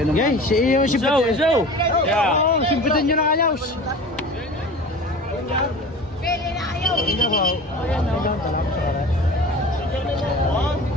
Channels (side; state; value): both; normal; correlation 0.37